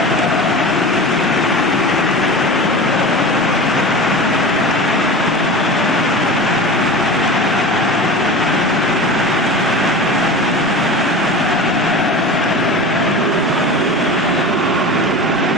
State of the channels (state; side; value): normal; both; correlation 0.32